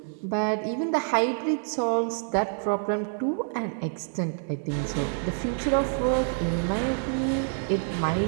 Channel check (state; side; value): silent; left; 59 dB below the other